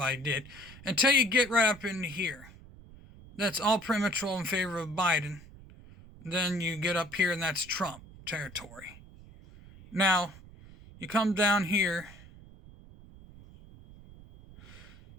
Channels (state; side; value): noise; right; rumble, 20 dB below the sound